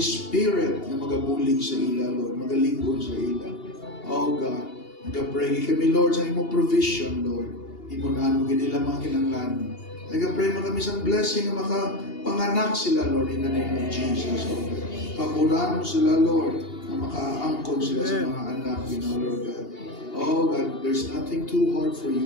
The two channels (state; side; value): late; right; 2.8 ms